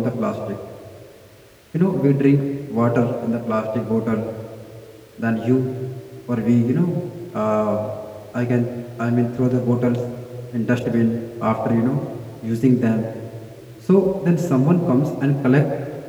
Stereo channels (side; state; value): both; identical; correlation 1.00